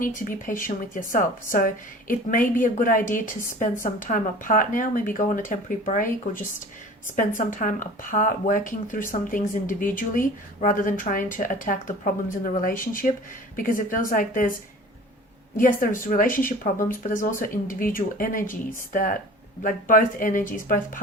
to be patient with yourself. So it may be a good idea to spend some time apart now, maybe go on a temporary break, or just spend some time apart working through some things individually, rather than trying to attack the problems in the relationship, because it feels like there's relationship problems, but there's also individual energies that, like, both energies, both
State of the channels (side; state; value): both; normal; correlation 0.42